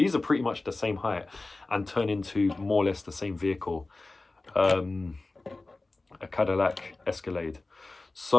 are pretty much the same height and turn into more or less the same vehicle. A Cadillac Escalade.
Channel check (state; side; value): quieter; right; 3.3 dB